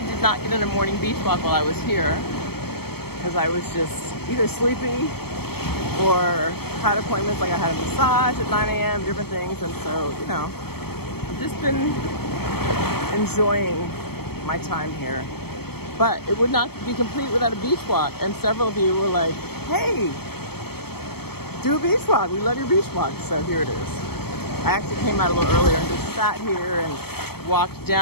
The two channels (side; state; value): right; late; 0.96 ms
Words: did not get in a morning beach walk while I was here. Because I was just either sleepy or had appointments, like I had a massage at 9 a.m., different things. And so, you know, I've just been enjoying my time here. But it would not be complete without a beach walk. And several of you were like, hey, do a beach walk. We love your beach walk. So here it is. I actually came out a little earlier and just sat here and walked